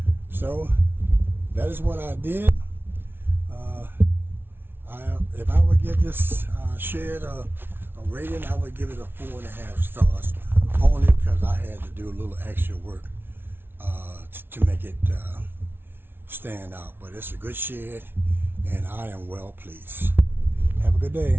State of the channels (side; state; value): left; late; 0.11 ms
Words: So that is what I did. If I would give this shed a rating, I would give it a 4.5 stars, only because I had to do a little extra work to make it stand out. But it's a good shed, and I am well pleased. Have a good